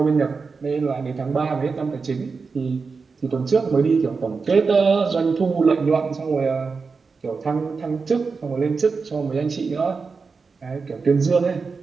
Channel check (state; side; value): quieter; left; 4.8 dB